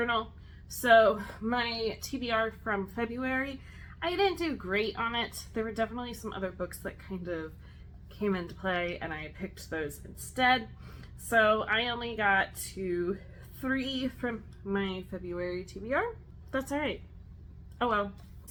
So my TBR from February, I didn't do great on it. There were definitely some other books that kind of came into play, and I picked those instead. So I only got to 3 from my February TBR. That's alright. Oh well.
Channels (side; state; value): both; identical; correlation 1.00